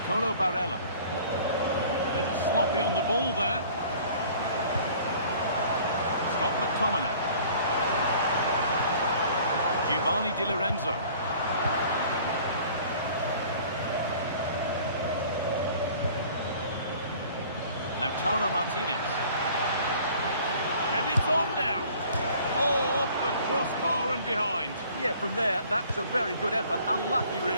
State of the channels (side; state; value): both; inverted; correlation -0.51